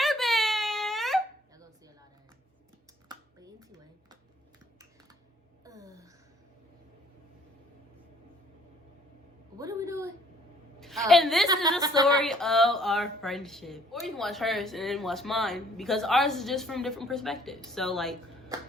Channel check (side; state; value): both; normal; correlation 0.61